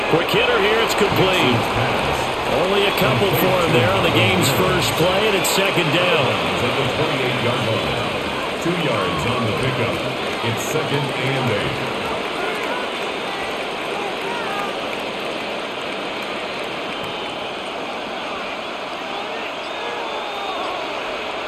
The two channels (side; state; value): both; identical; correlation 1.00